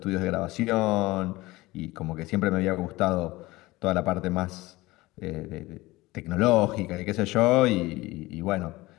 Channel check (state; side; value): quieter; right; 20.0 dB